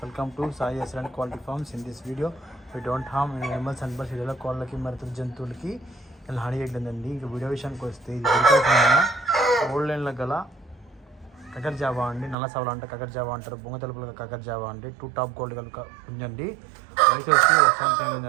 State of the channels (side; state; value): left; drops out; at 12.4 s